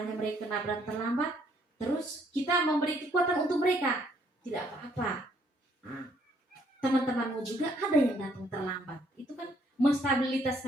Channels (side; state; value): both; normal; correlation 0.67